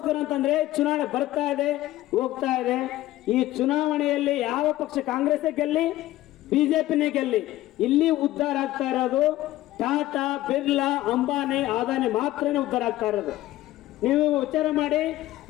ಅಂತಂದ್ರೆ ಚುನಾವಣೆ ಬರ್ತಾ ಇದೆ, ಹೋಗ್ತಾ ಇದೆ. ಈ ಚುನಾವಣೆಯಲ್ಲಿ ಯಾವ ಪಕ್ಷ, ಕಾಂಗ್ರೆಸ್ ಗೆಲ್ಲಿ, ಬಿಜೆಪಿನೇ ಗೆಲ್ಲಿ, ಇಲ್ಲಿ ಉದ್ಧಾರ ಆಗ್ತಾ ಇರೋದು ಟಾಟಾ, ಬಿರ್ಲಾ, ಅಂಬಾನಿ, ಅದಾನಿ ಮಾತ್ರನೇ ಉದ್ಧಾರ ಆಗ್ತಾ ಇರೋದು. ನೀವು ವಿಚಾರ ಮಾಡಿ,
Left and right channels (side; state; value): right; quieter; 15.7 dB